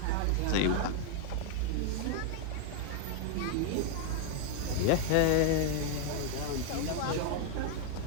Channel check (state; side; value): different; both; correlation 0.00